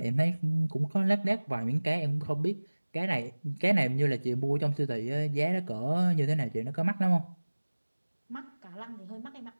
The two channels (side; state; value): both; inverted; correlation -1.00